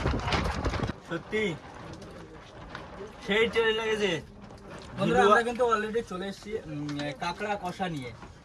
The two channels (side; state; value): both; identical; correlation 1.00